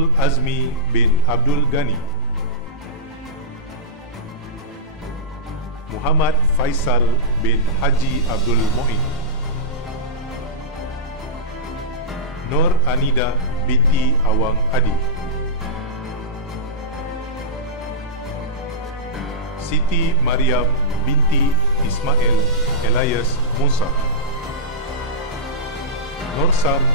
Azmi bin Abdul Ghani. Muhammad Faisal bin Haji Abdul Mu'in. Nur Anida binti Awang Adi. Siti Mariam binti Ismail Elias Musa. Nursan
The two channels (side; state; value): both; normal; correlation -0.13